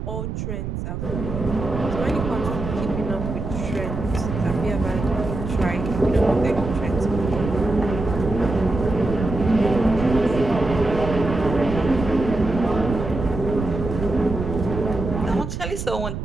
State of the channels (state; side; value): noise; right; rumble, 5 dB below the sound